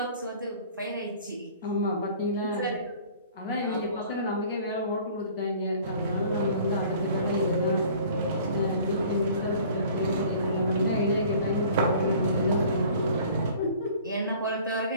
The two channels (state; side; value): inverted; both; correlation -0.50